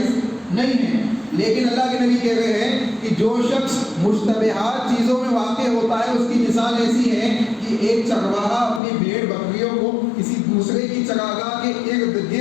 نہیں ہے۔ لیکن اللہ کے نبی کہہ رہے ہیں کہ جو شخص مشتبہات چیزوں میں واقع ہوتا ہے، اس کی مثال ایسی ہے کہ ایک چرواہا اپنی بھیڑ بکریوں کو کسی دوسرے کی چراگاہ کے ارد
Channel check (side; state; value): right; drops out; at 8.8 s